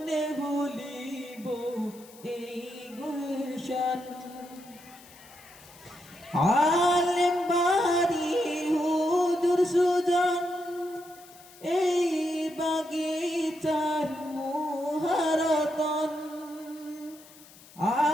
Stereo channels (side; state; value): left; noise; hiss, 22 dB below the sound